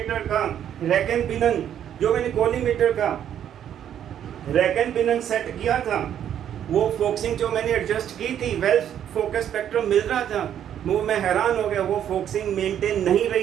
का रैक एंड पिनन, जो मैंने कॉलीमेटर का रैक एंड पिनन सेट किया था, वो फोकसिंग जो मैंने एडजस्ट की थी, वेल फोकस स्पेक्ट्रम मिल रहा था, वो मैं हैरान हो गया, वो फोकसिंग मेंटेन नहीं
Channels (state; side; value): quieter; left; 9.9 dB